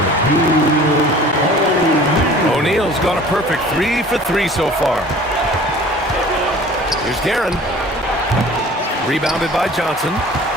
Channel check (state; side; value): normal; both; correlation 0.46